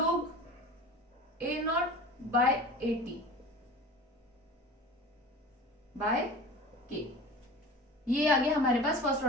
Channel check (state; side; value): normal; both; correlation 0.37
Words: A0 by AT by K। ये आ गया हमारे पास फर्स्ट